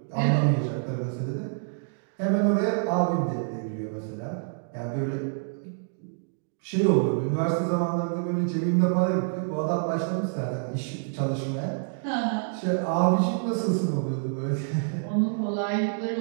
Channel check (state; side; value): silent; left; digital silence